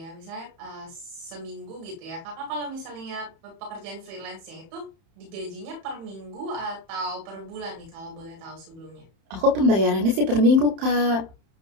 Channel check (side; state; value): left; late; 31 ms